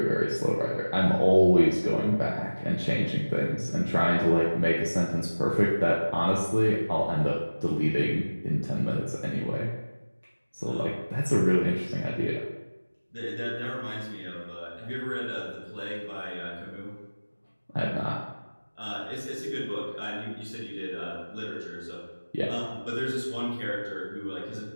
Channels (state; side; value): inverted; both; correlation -1.00